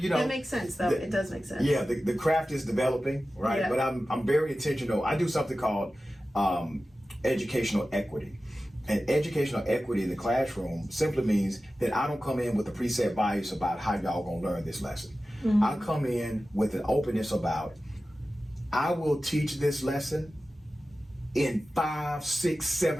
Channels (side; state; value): both; normal; correlation 0.95